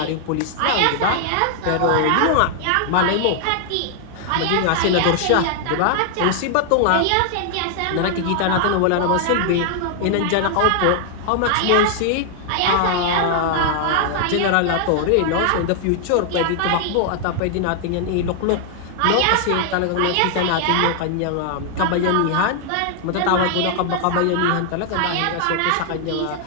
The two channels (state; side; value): different; both; correlation 0.00